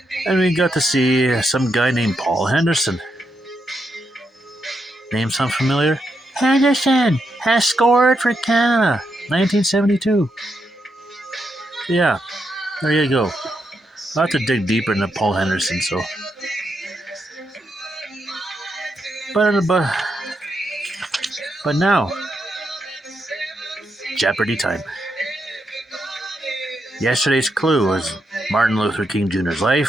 And we got to see some guy named Paul Henderson. Name sound familiar? Henderson has scored for Canada, 1972. Yeah, there you go. I'll have to dig deeper into Paul Henderson, so. But now, Jeopardy time. Yesterday's clue was Martin Luther King Jr.'s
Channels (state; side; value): normal; both; correlation 0.82